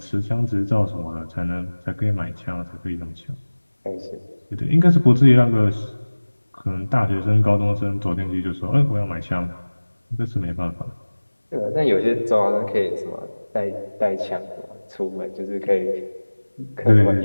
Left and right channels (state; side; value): inverted; both; correlation -1.00